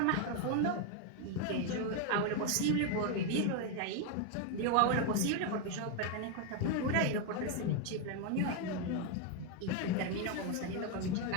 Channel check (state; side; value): different; both; correlation 0.01